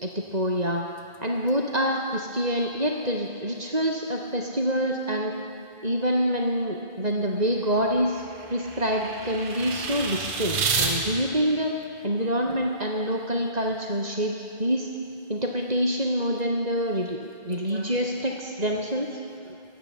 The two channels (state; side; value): late; left; 2.4 ms